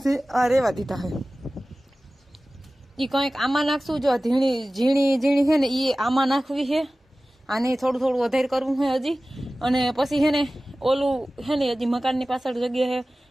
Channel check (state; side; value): normal; both; correlation 0.97